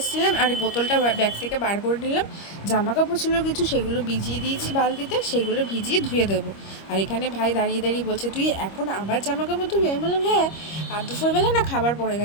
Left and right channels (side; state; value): right; late; 25 ms